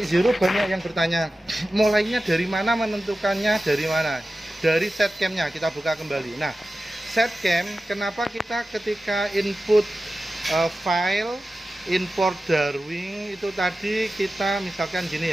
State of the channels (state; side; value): normal; both; correlation 0.94